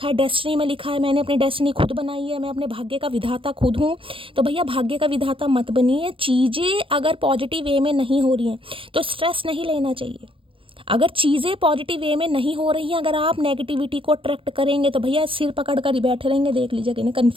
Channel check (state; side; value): late; left; 0.25 ms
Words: है, डेस्टिनी में लिखा है, मैंने अपनी डेस्टिनी खुद बनाई है, मैं अपने भाग्य का विधाता खुद हूँ, तो भैया भाग्य का विधाता मत बनिए। चीज़ें अगर पॉजिटिव वे में नहीं हो रही हैं तो स्ट्रेस नहीं लेना चाहिए। अगर चीज़ें पॉजिटिव वे में नहीं हो रही हैं, अगर आप नेगेटिविटी को अट्रैक्ट करेंगे तो भैया सिर पकड़ कर ही बैठे रहेंगे। देख लीजिए कि